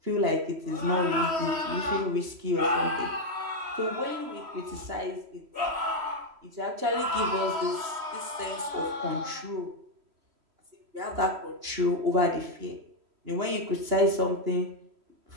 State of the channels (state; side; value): late; left; 3.1 ms